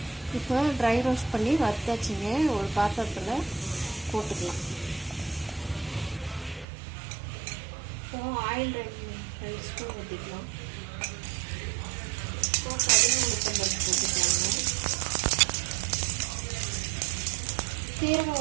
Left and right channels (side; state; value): left; drops out; at 6.7 s